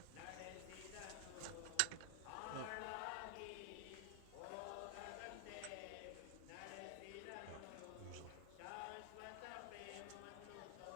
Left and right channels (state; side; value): different; both; correlation 0.00